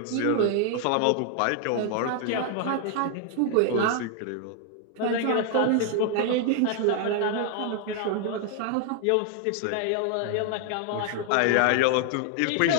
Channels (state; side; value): different; both; correlation 0.00